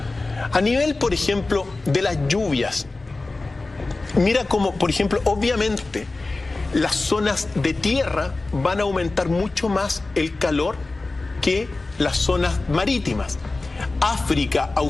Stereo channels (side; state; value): right; quieter; 3.3 dB